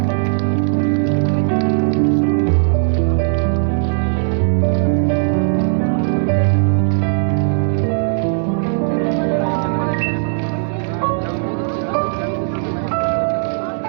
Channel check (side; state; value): left; silent; digital silence